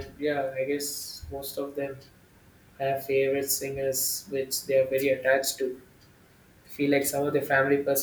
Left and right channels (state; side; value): identical; both; correlation 1.00